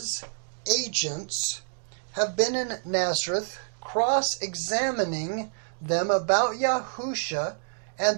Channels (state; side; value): silent; left; digital silence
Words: agents have been in Nazareth cross-examining them about Yahusha,